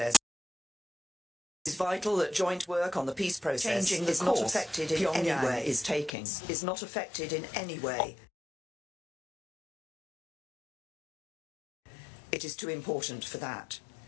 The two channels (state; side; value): drops out; right; at 6.1 s